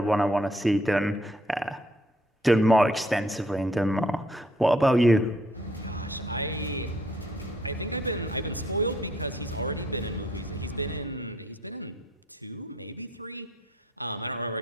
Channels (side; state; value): both; normal; correlation 0.65